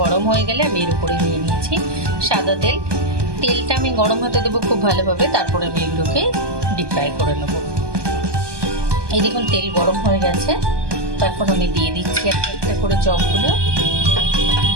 গরম হয়ে গেলে আমি এর উপরে নিয়ে নিয়েছি সাদা তেল। তেলটা আমি গরম হতে দেবো খুব ভালোভাবে, তারপরে আমি এগুলোকে ডিপ ফ্রাই করে নেব। এই দেখুন তেল গরম হয়ে গেছে, তো এখন আমি দিয়ে দিচ্ছি একটা একটা করে চপগুলো।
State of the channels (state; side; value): late; left; 1.2 ms